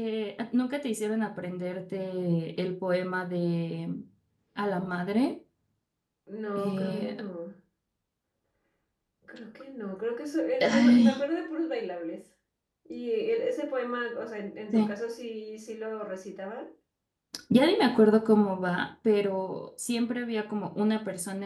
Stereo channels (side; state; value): both; identical; correlation 1.00